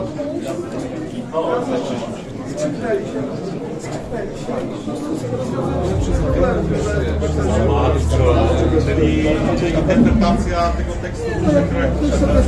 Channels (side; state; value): both; identical; correlation 1.00